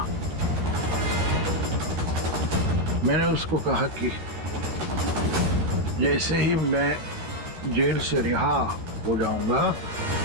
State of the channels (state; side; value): late; left; 13 ms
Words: मैंने उसको कहा कि जैसे ही मैं जेल से रिहा हो जाऊंगा,